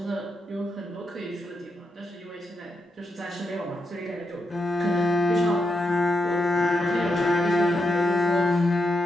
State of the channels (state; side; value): normal; both; correlation 0.83